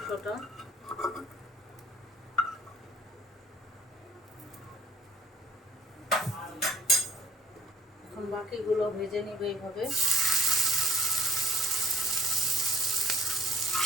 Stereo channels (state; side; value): normal; both; correlation 0.50